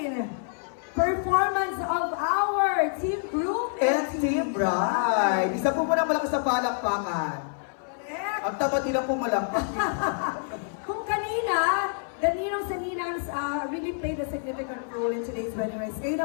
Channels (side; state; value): right; silent; 57 dB below the other